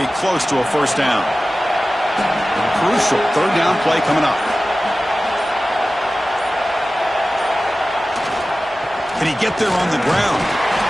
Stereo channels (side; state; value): both; normal; correlation 0.96